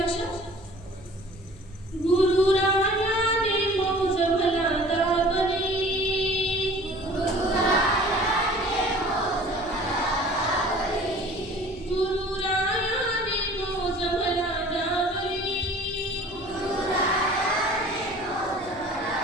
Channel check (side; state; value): right; noise; hum, 23 dB below the sound